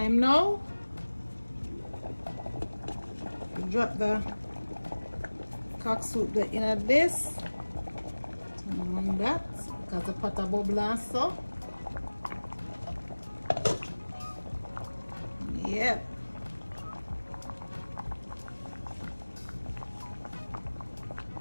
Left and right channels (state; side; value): inverted; both; correlation -1.00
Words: now. Drop the cock soup in this. Turn on that because the pot a bubble and so. Yep.